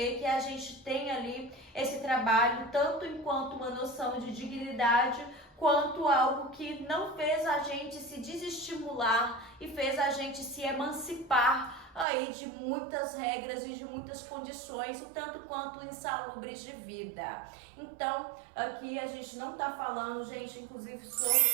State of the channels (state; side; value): drops out; left; at 12.1 s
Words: que a gente tem ali esse trabalho tanto enquanto uma noção de dignidade, quanto algo que não fez a gente se desestimular e fez a gente se emancipar aí de muitas regras e de muitas condições, o tanto quanto insalubres de vida. Então, aqui a gente não tá falando, gente, inclusive